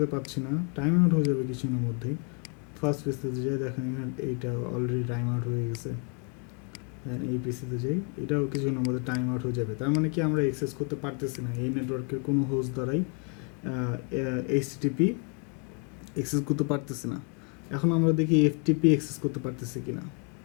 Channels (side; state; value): right; quieter; 34.5 dB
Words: পাচ্ছি না, টাইম আউট হয়ে যাবে কিছুক্ষণের মধ্যেই। ফার্স্ট পিসিতে যাই, দেখেন এখানে এইটা অলরেডি টাইম আউট হয়ে গেছে। দেন এই পিসিতে যাই, এটাও কিছুক্ষণের মধ্যে টাইম আউট হয়ে যাবে। তার মানে কি আমরা অ্যাক্সেস করতে পারতেছি না, এই নেটওয়ার্কের কোনো হোস্ট দ্বারাই এইচটিটিপি অ্যাক্সেস করতে পারতেছি না। এখন আমরা দেখি এফটিপি অ্যাক্সেস করতে পারতেছি কিনা।